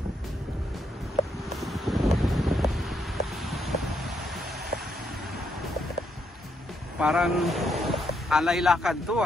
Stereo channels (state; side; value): normal; both; correlation 0.77